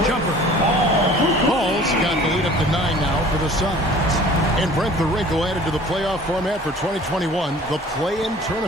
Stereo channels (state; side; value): normal; both; correlation 0.48